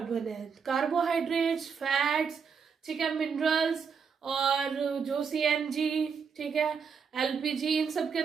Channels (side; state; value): left; quieter; 6.1 dB